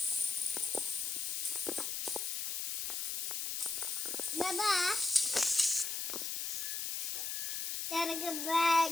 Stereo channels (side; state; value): left; noise; hiss, 1 dB below the sound